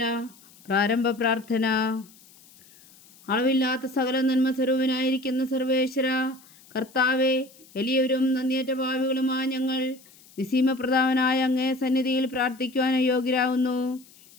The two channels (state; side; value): noise; left; hiss, 25 dB below the sound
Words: പ്രാരംഭ പ്രാർത്ഥന. അളവില്ലാത്ത സകല നന്മ സ്വരൂപനായിരിക്കുന്ന സർവേശ്വര കർത്താവെ, എളിയവരും നന്ദിയേറ്റ ഭാവികളുമായ ഞങ്ങൾ നിസീമപ്രധാനായ അങ്ങേ സന്നിധിയിൽ പ്രാർത്ഥിക്കുവാൻ അയോഗ്യരാകുന്നു.